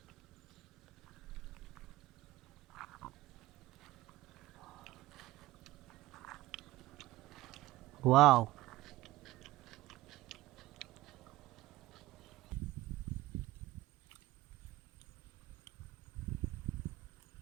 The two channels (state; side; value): quieter; left; 17.4 dB